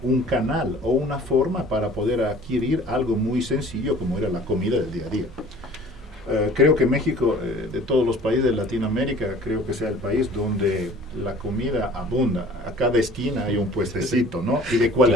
canal o una forma para poder adquirir algo muy sencillo como era la comida del día a día. Creo que México, de todos los países de Latinoamérica, creo que sea el país donde la comida abunda. A cada esquina hay un puestecito, ¿no? Y de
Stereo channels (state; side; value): normal; both; correlation 0.48